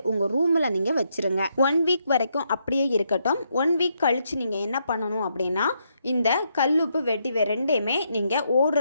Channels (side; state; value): both; inverted; correlation -0.77